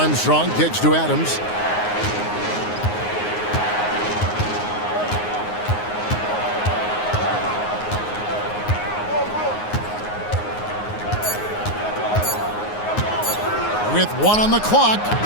kicks to Adams. With 1 on the clock,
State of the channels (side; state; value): right; late; 9.6 ms